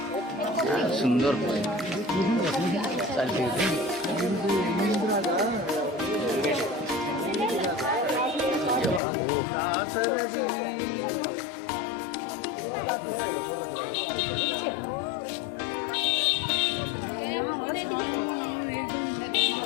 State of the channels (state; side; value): drops out; right; at 9.0 s